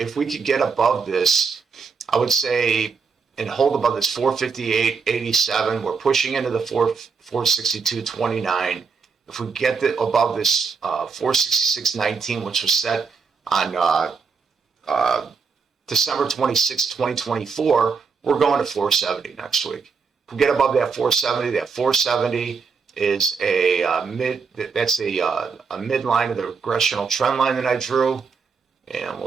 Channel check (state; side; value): quieter; left; 5.3 dB